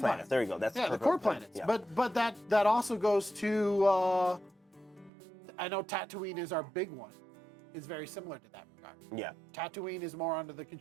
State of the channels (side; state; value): left; drops out; at 5.1 s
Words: There you go. That's the core planets. Yeah. But that also goes to I know Tatooine is our big one. Is very similar to that regard. Yeah. Tatooine is more under the